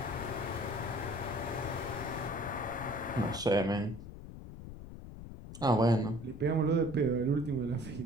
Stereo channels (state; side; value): noise; left; rumble, 12 dB below the sound